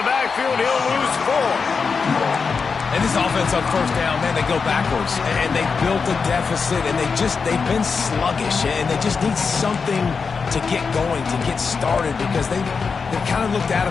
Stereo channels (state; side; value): quieter; right; 5.3 dB